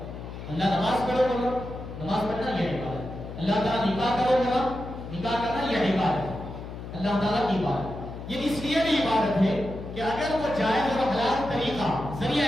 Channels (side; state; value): left; noise; hum, 10 dB below the sound